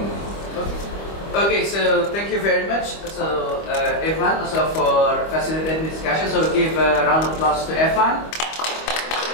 Okay, so thank you very much. So Evan, also for facilitating discussion. So give a round of applause to Evan.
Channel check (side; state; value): right; late; 25 ms